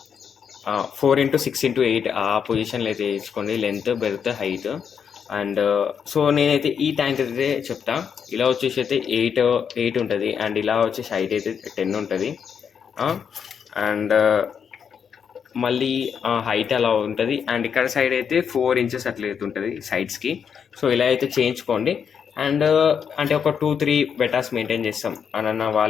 4x6x8 ఆ పొజిషన్లో అయితే వేయించుకోండి. Length, berth, height. And so నేనైతే ఈ ట్యాంక్ అయితే చెప్తా. ఇలా వచ్చేసి అయితే 8 ఉంటుంది. అండ్ ఇలా వచ్చేసి హైట్ అయితే 10 ఉంటుంది. అండ్ మళ్ళీ హైట్ అలా ఉంటుంది. అండ్ ఇక్కడ సైడ్ అయితే 4 ఇంచెస్ అట్లా అయితే ఉంటుంది సైడ్స్కి. సో ఇలా అయితే చేయించుకోండి. అండ్ అంటే ఒక 2-3 బెటాస్ మెయింటైన్ చేస్తాం అన్న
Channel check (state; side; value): quieter; right; 7.2 dB